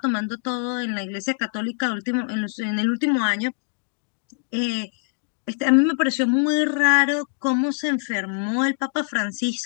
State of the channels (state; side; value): silent; right; digital silence